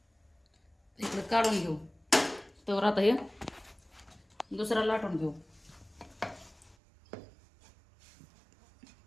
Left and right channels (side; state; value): left; drops out; at 6.8 s